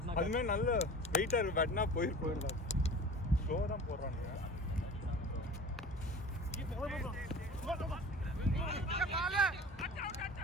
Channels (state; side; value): normal; both; correlation 0.38